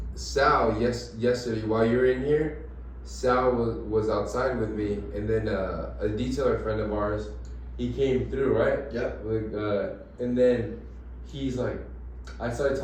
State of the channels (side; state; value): both; identical; correlation 1.00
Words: Sal, yesterday while you were in here, Sal was outside with me, and then a detailer friend of ours, he came through, right? Yep. And then he's like, I started